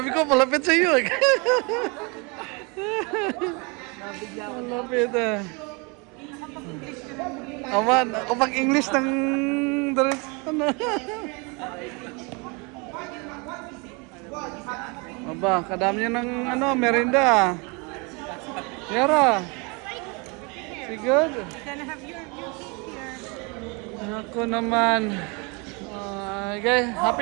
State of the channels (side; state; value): left; quieter; 30.4 dB